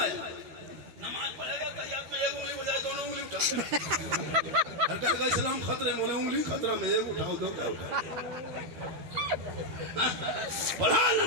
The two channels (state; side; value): late; left; 13 ms